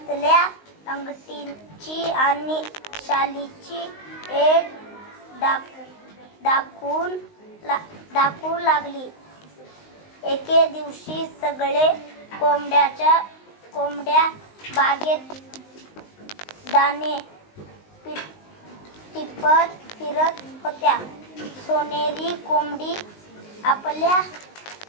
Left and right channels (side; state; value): right; late; 19 ms